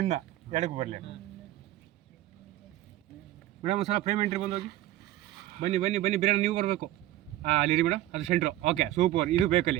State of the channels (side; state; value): left; quieter; 14.6 dB